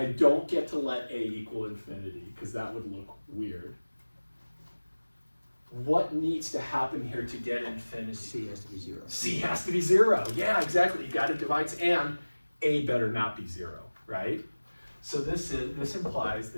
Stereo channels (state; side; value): inverted; both; correlation -1.00